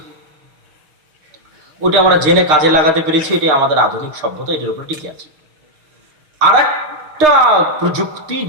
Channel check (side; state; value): left; late; 6.6 ms